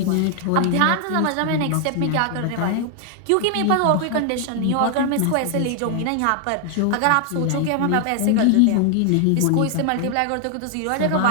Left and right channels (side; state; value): both; different; correlation 0.00